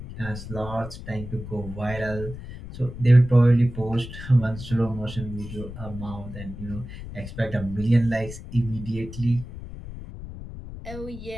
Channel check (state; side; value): noise; left; rumble, 11 dB below the sound